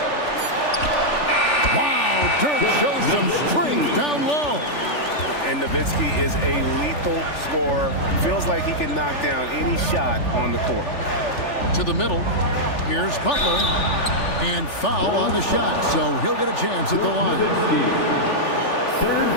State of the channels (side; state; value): right; late; 3.4 ms